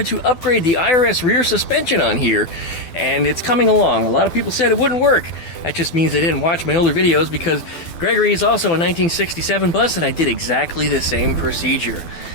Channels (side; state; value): right; late; 12 ms